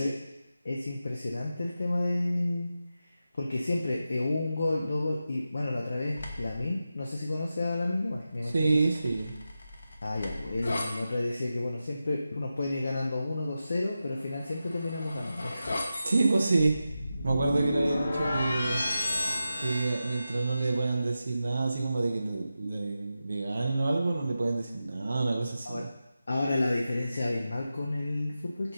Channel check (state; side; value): inverted; both; correlation -0.91